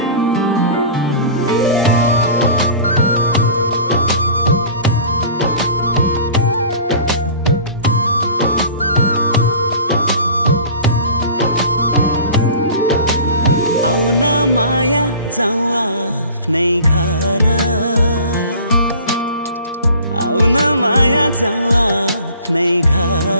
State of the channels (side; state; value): both; inverted; correlation -0.43